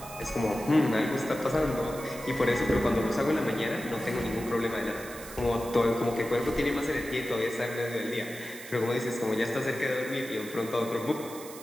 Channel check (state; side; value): noise; right; hiss, 15 dB below the sound